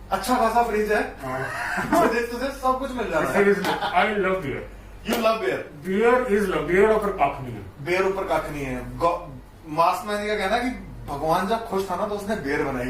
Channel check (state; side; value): identical; both; correlation 1.00